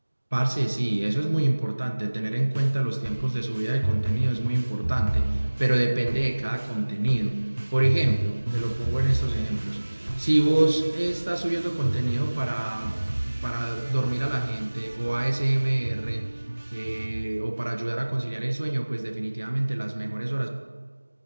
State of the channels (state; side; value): inverted; both; correlation -1.00